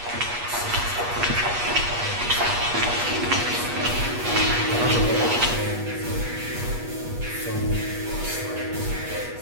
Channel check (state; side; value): late; left; 8.3 ms